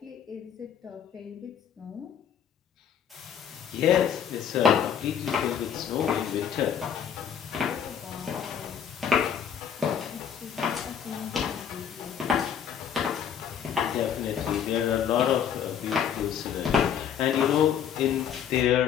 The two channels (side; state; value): right; quieter; 8.5 dB